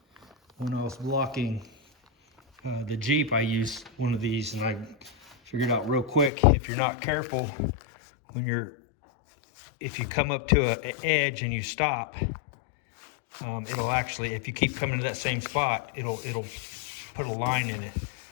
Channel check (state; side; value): drops out; right; at 6.3 s